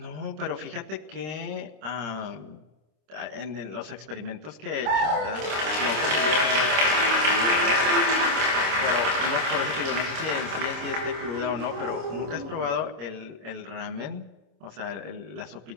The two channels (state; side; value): late; left; 26 ms